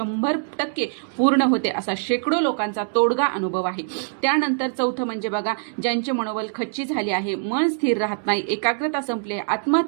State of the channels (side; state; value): left; silent; 63 dB below the other